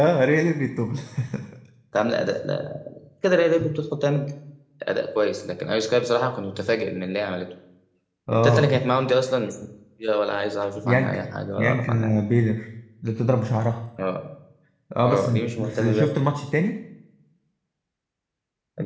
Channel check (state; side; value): identical; both; correlation 1.00